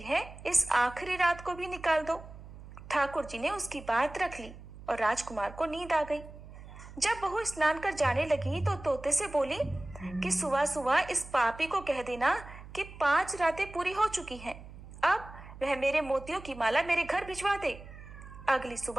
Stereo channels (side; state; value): right; noise; hum, 16 dB below the sound